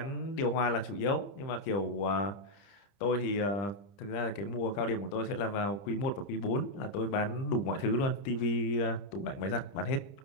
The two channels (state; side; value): late; right; 30 ms